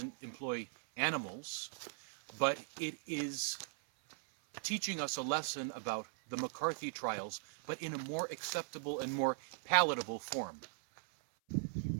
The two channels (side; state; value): left; silent; 52 dB below the other